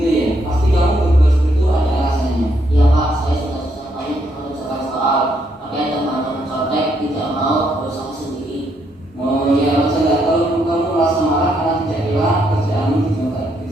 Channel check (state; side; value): normal; both; correlation 0.75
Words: ya, pasti kamu berbuat seperti itu ada alasannya. Iya Pak, saya sudah susah banyak mengerjakan soal, pakai temannya mencontek, tidak mau berusaha sendiri. Oh ya, masa nggak tahu kamu merasa marah karena tidak rela kerjaanmu dicontek,